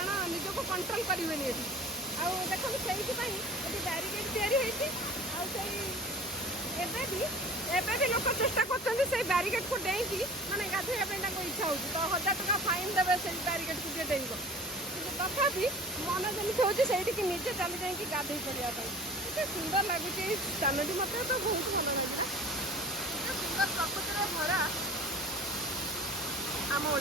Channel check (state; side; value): normal; both; correlation 0.41